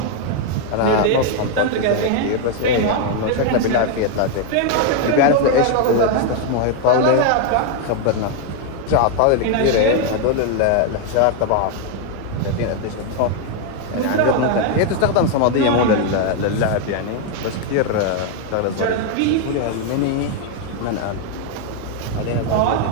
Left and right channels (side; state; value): both; different; correlation 0.01